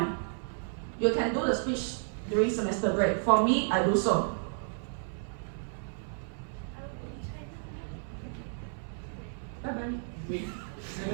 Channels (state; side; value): silent; left; 56 dB below the other